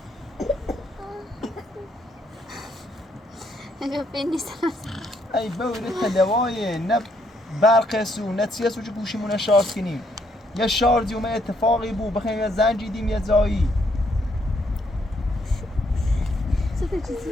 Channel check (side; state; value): both; normal; correlation 0.72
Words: ای بوری تدوایه نه برق سو نه چیه سو چه گوشیمونه شارژ کنیم یه شارژی اومه اتفاقی بود بخیم یه زنگ دیدیم یه زایی چطور چیزی